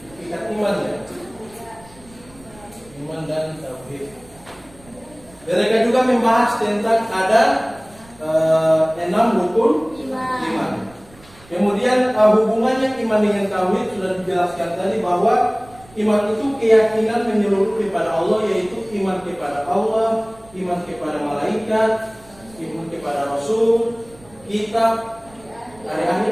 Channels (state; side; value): noise; right; rumble, 25 dB below the sound